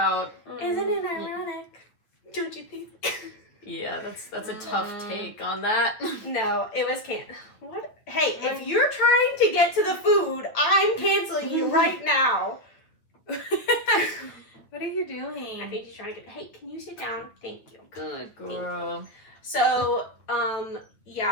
Isn't it ironic? Don't you think? Yeah, that's a tough take on that. No, it was what? Hey, if you're trying to get to the food, I'm canceling you right now. What are you doing? I think he's trying to get... Hey, can you sit down? Thank you. Good girl. So,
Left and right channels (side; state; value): right; late; 9.3 ms